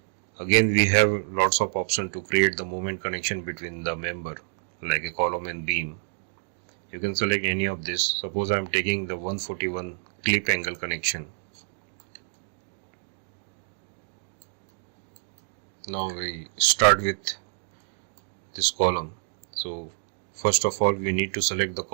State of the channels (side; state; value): left; silent; digital silence